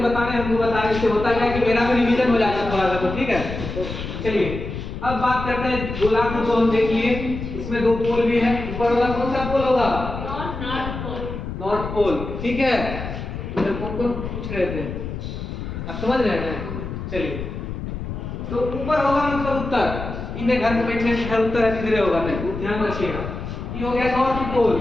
बताने, हमको बता रहे, इससे होता क्या है कि मेरा भी रिवीजन हो जाता है थोड़ा सा। तो ठीक है, चलिए अब बात करते हैं गोलार्ध को। हम देख लिए इसमें 2 पोल भी है। ऊपर वाला कौन सा पोल होगा? North pole. ठीक है, तो कौन पूछ रहे थे, आप समझ रहे हैं? चलिए तो ऊपर होगा मतलब उत्तर। इन्हें घर में बैठने से घर उत्तर है, किधरे होगा? नहीं, ध्यान रखिएगा। ये हो गया नॉर्थ पोल,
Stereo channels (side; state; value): left; noise; rumble, 7 dB below the sound